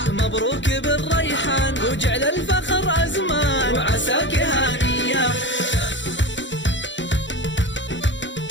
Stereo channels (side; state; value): right; late; 0.54 ms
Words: مبروك بالريحان، وجعل الفخر أزمان وعساك هانية.